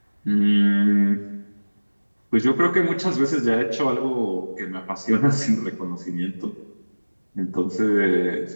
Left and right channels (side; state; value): both; inverted; correlation -1.00